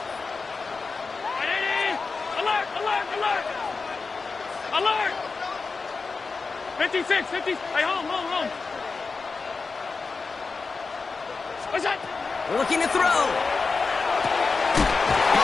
Alert. 56. Hey, home. What's that? Looking to throw.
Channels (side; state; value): right; quieter; 4.4 dB